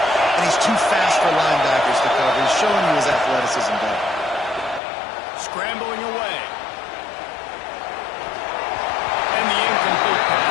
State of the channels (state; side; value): drops out; right; at 4.8 s